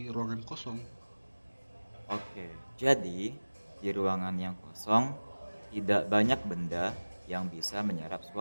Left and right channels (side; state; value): both; inverted; correlation -1.00